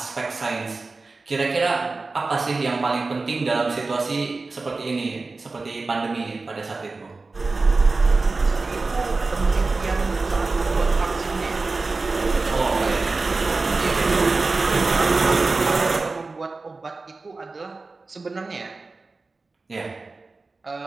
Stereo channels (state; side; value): quieter; left; 3.7 dB